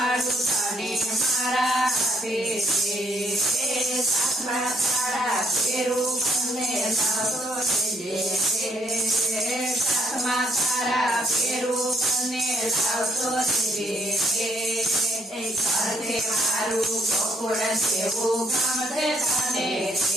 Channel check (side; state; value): both; normal; correlation 0.69